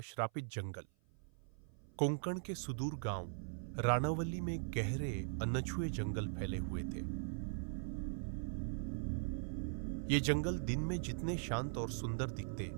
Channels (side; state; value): left; silent; 51 dB below the other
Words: जंगल। कोंकण के सुदूर गांव रानावली में गहरे अनछुए जंगल फैले हुए थे। ये जंगल दिन में जितने शांत और सुंदर दिखते,